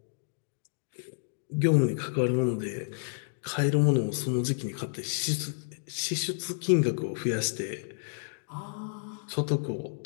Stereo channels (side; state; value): right; silent; digital silence